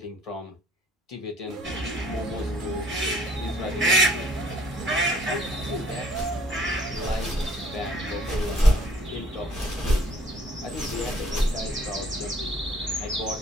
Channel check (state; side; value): normal; both; correlation 0.59